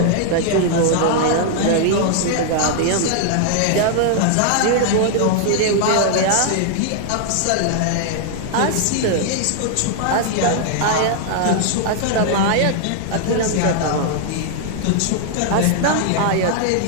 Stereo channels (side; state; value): both; different; correlation 0.00